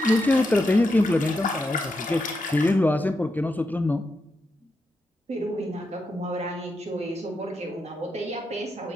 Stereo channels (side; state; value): both; normal; correlation 0.84